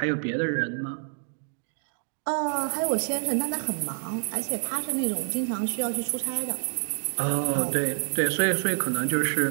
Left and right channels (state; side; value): silent; left; 56 dB below the other